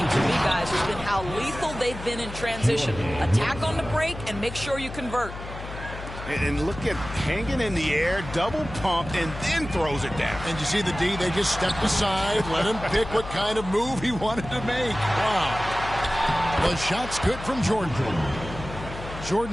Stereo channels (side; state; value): left; noise; hum, 11 dB below the sound